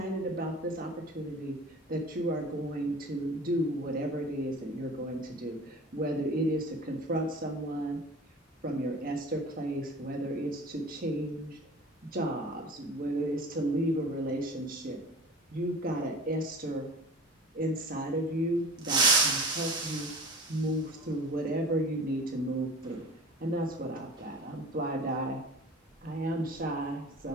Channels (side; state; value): both; normal; correlation 0.39